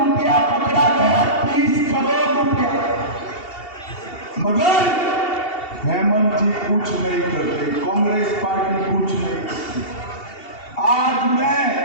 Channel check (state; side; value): late; right; 2.7 ms